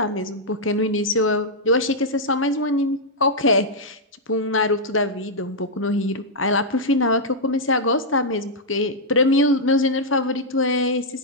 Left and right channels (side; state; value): both; normal; correlation -0.06